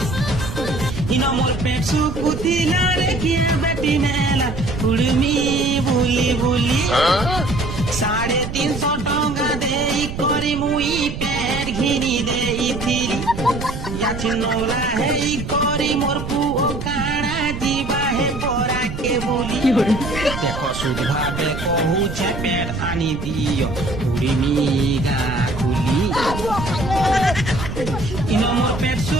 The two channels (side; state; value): right; noise; rumble, 7 dB below the sound